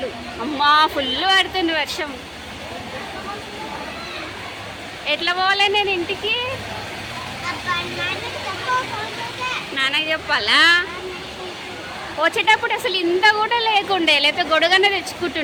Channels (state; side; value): identical; both; correlation 1.00